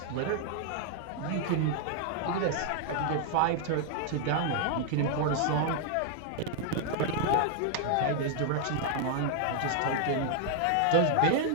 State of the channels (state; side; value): different; both; correlation 0.00